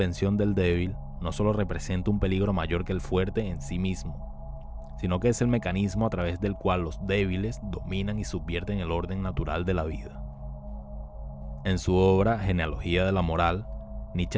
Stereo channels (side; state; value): both; identical; correlation 1.00